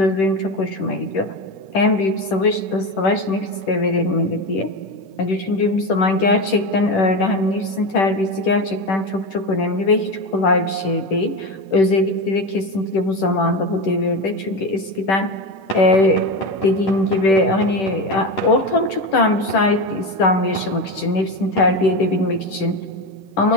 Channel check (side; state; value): right; late; 10 ms